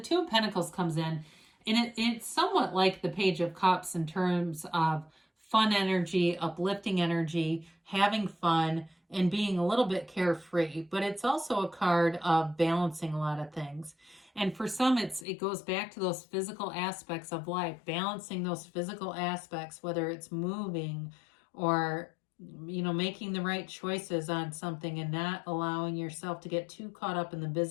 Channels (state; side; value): drops out; right; at 15.2 s